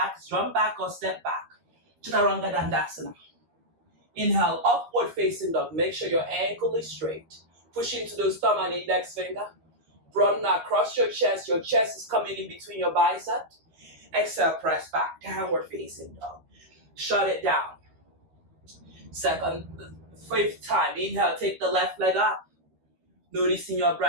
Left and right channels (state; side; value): late; left; 13 ms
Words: jump back or step back. Chaturanga Dandasana. Inhale, upward facing dog. Make sure your ankle is straight. Push into those thumb and index finger. Broaden across your chest. Your chest is coming in between your biceps. Exhale, press back. Downward facing dog. Shut it down. Second, 5th time. Inhale, take the left leg up. Noticing your